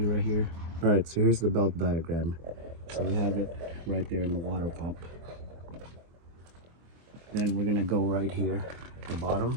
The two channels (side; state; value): left; late; 23 ms